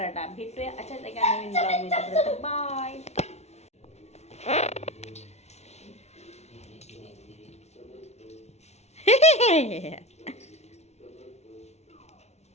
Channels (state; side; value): late; right; 0.31 ms